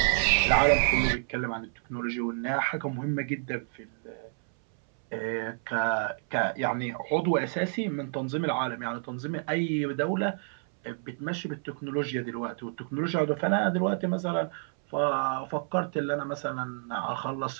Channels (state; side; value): silent; left; 59 dB below the other